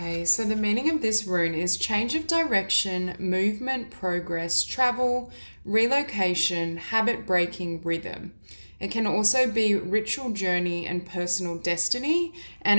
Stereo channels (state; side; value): inverted; both; correlation -1.00